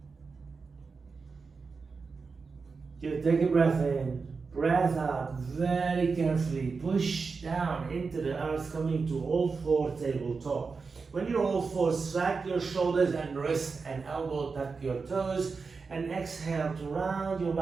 Just take a breath in, breath out, very carefully, push down into the earth, coming to all four tabletop. When you're all four, slack your shoulders and wrist and elbow, tuck your toes, and exhale to round your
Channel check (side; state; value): left; quieter; 4.7 dB